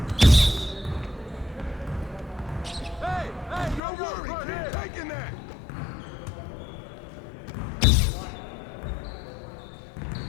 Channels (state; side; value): drops out; right; at 3.8 s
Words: Don't worry, keep taking that.